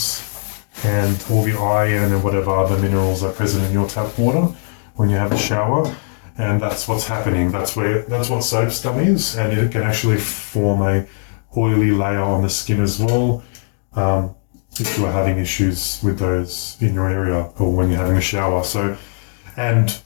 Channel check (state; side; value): silent; right; digital silence